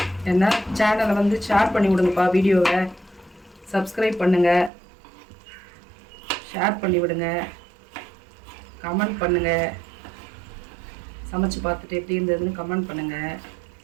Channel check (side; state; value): left; drops out; at 4.7 s